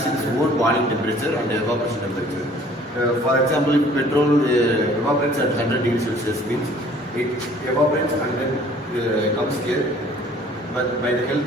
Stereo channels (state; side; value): normal; both; correlation 0.54